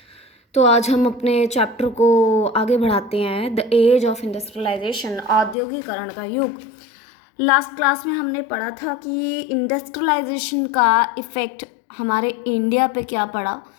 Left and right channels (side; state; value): right; drops out; at 5.6 s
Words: तो आज हम अपने चैप्टर को आगे बढ़ाते हैं, द एज ऑफ इंडस्ट्रियलाइजेशन, औद्योगिकरण का युग। लास्ट क्लास में हमने पढ़ा था कि इंडस्ट्रियलाइजेशन का इफ़ेक्ट हमारे इंडिया पे क्या पड़ा,